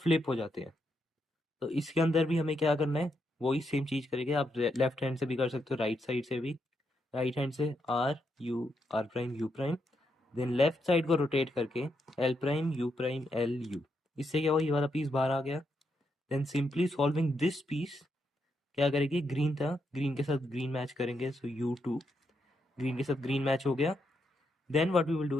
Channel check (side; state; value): both; normal; correlation 0.81